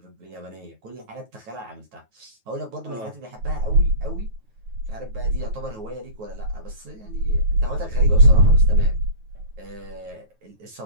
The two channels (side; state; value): left; late; 9.3 ms